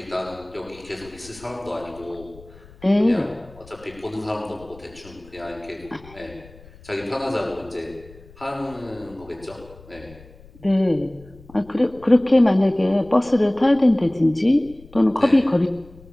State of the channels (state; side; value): noise; left; rumble, 22 dB below the sound